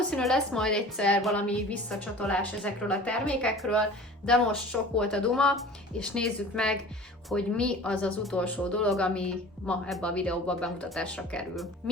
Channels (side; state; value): both; normal; correlation 0.41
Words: lesz majd egyszer valami visszacsatolás ezekről a termékekről, de most sok volt a duma, és nézzük meg, hogy mi az az utolsó dolog, ami ma ebbe a videóban bemutatásra kerül.